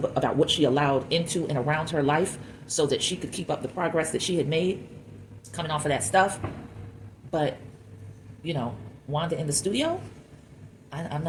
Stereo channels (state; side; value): identical; both; correlation 1.00